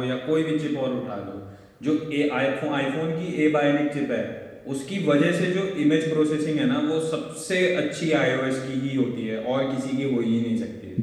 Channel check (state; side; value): identical; both; correlation 1.00